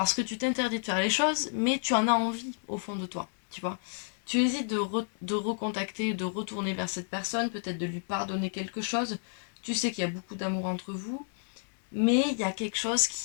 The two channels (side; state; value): right; silent; digital silence